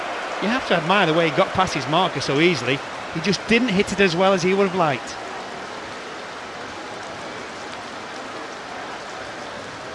You have to admire the way he got past his marker so easily. He just didn't hit it as well as he would have liked.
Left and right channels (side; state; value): both; identical; correlation 1.00